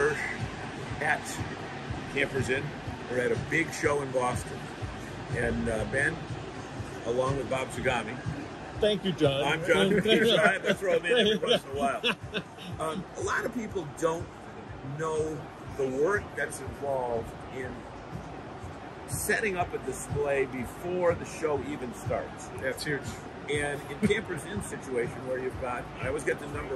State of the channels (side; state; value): both; identical; correlation 1.00